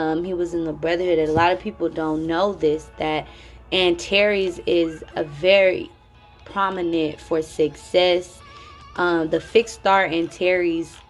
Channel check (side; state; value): both; identical; correlation 1.00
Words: he was in the brotherhood. And a lot of people don't know this, that Antares is a very prominent for success. The fixed star Antares,